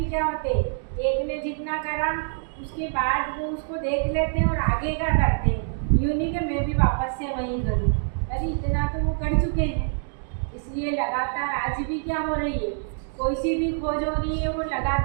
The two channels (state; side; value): silent; left; digital silence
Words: क्या होते, एक ने जितना करा उसके बाद वो उसको देख लेते हैं और आगे क्या करते हैं। यूँ नहीं कि मैं भी वापस से वहीं करूँ, अरे इतना तो वो कर चुके हैं। इसलिए लगातार आज भी क्या हो रही है, कोई सी भी खोज हो रही है वो